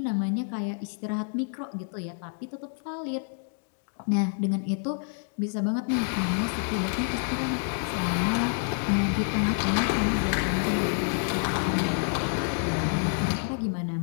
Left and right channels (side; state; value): right; silent; 59 dB below the other